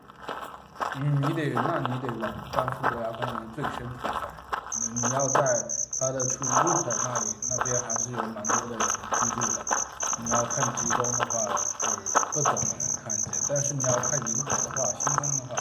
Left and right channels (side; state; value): both; identical; correlation 1.00